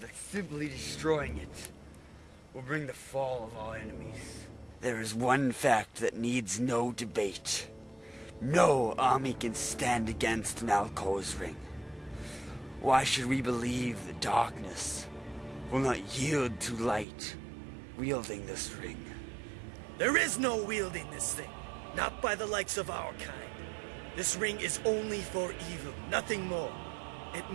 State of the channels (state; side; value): drops out; left; at 17.1 s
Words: that simply destroying it will bring the fall of our enemies? There is one fact that needs no debate. No army can stand against Nalkor's ring. Why should we believe the darkness will not yield to light wielding this ring? There is no wielding this thing, not by the likes of our kind. This ring is only for evil, nothing more. It